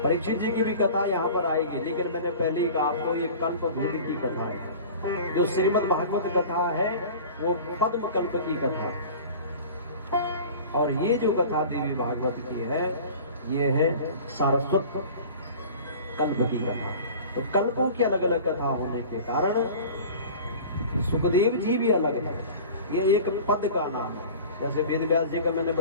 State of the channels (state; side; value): inverted; both; correlation -0.40